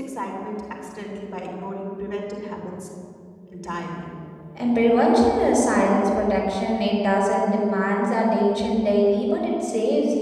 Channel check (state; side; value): identical; both; correlation 1.00